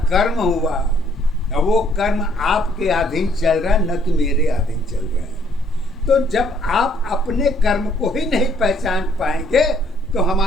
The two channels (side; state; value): both; normal; correlation 0.65